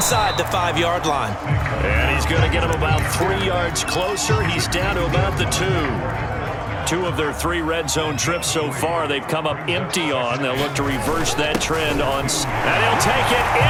the 5-yard line. And he's going to get him about 3 yards closer. He's down to about the 2. 2 of their 3 red zone trips so far, they've come up empty on. They'll look to reverse that trend on. And he'll take it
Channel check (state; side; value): identical; both; correlation 1.00